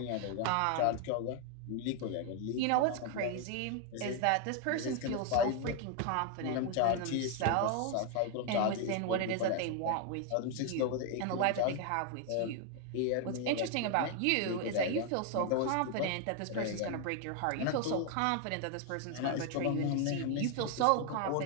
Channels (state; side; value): different; both; correlation 0.01